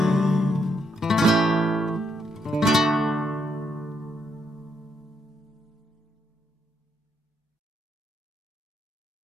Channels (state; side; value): normal; both; correlation 0.78